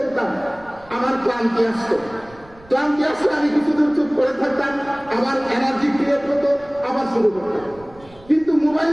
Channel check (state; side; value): noise; right; rumble, 24 dB below the sound